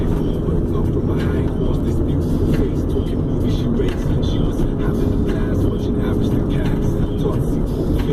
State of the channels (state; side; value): identical; both; correlation 1.00